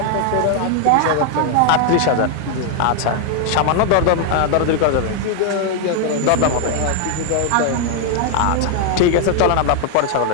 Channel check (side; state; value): both; different; correlation 0.00